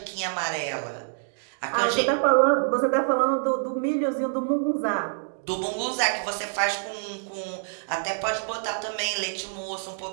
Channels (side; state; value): left; silent; digital silence